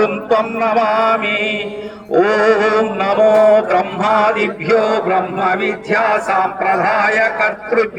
త్వం నమామి. ఓం నమో బ్రహ్మాదిభ్యో బ్రహ్మ విద్యా సాంప్రదాయ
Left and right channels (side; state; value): both; identical; correlation 1.00